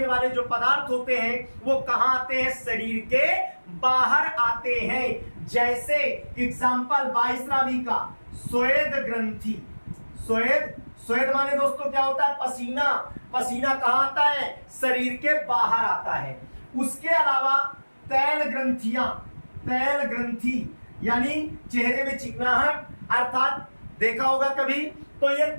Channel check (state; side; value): inverted; both; correlation -1.00